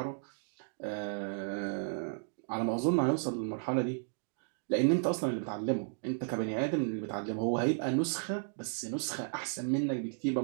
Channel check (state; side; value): silent; left; digital silence